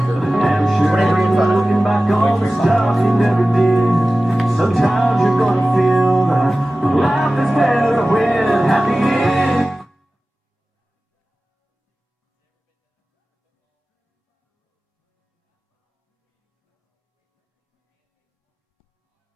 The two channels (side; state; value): both; normal; correlation 0.96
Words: Damn sure you're looking back on the stuff you never did. Sometimes you're gonna feel that life is better when happy ends.